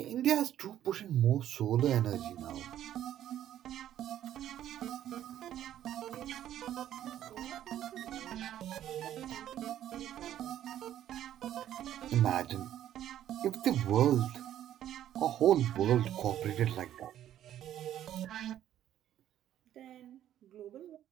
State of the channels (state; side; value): quieter; left; 11.5 dB